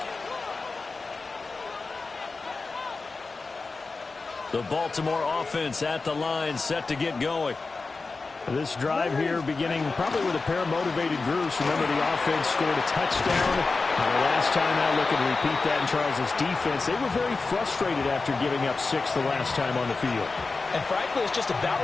The Baltimore offense at the line, set to get going. This drive here beginning probably with a pair of motivated groups. Remember, the offense scored a touchdown. The last time out, looking to repeat that in Charles' defense. They were very frustrated after giving up 6 the last time on the field. And frankly, it's just a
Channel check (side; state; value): right; quieter; 4.0 dB